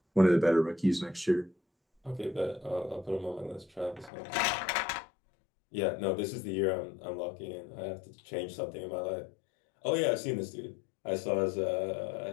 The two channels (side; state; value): right; drops out; at 4.1 s